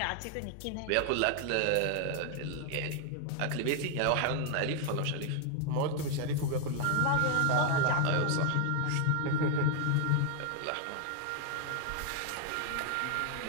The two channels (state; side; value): different; both; correlation 0.00